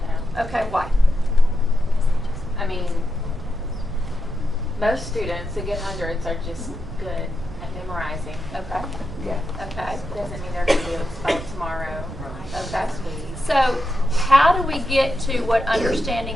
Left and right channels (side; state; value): right; noise; rumble, 13 dB below the sound